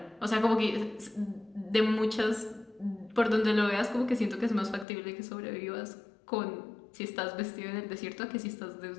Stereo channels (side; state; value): right; drops out; at 4.9 s